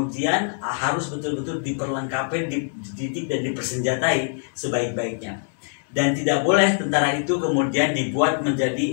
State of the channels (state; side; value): silent; right; digital silence